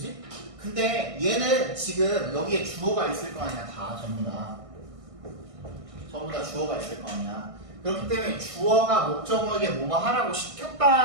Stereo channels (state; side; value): late; left; 1.6 ms